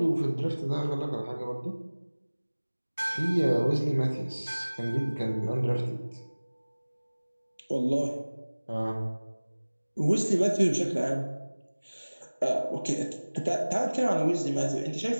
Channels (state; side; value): inverted; both; correlation -1.00